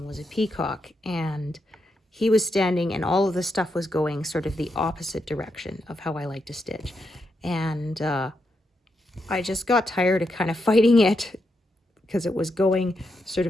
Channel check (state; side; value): normal; both; correlation 0.83